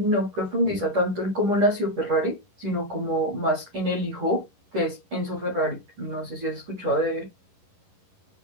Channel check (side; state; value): left; late; 11 ms